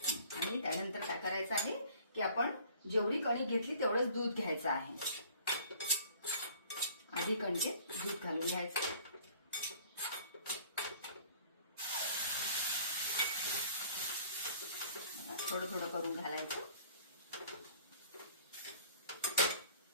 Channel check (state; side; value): inverted; both; correlation -0.54